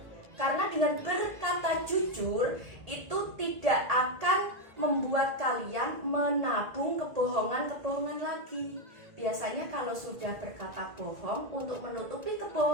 Karena dengan berkata jujur itu tidak akan membuat kalian menabung kebohongan-kebohongan lagi. Biasanya kalau sudah berkata bohong, untuk menutupi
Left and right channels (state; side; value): late; left; 1.8 ms